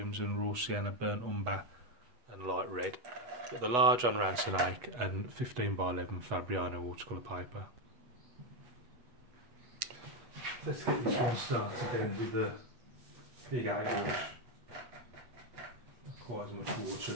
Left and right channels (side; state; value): left; late; 8.2 ms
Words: raw sienna, burnt umber and light red. Got the large on Ransonake and 15x11 Fabriano watercolour paper. Let's get this one started then with the big 8 brush. Not quite as much water